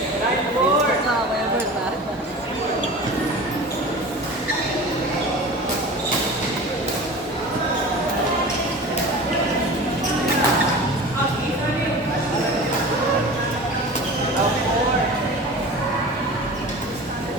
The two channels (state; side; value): normal; both; correlation 0.36